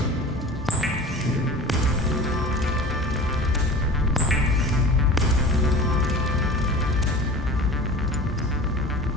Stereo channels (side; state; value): both; normal; correlation 0.38